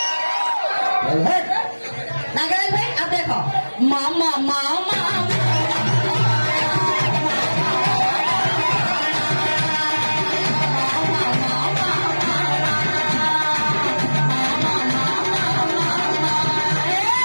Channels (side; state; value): both; inverted; correlation -1.00